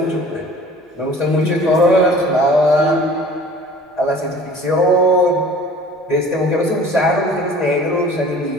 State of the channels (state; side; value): normal; both; correlation 0.47